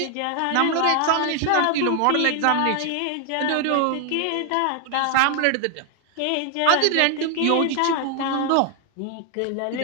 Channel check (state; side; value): different; both; correlation 0.01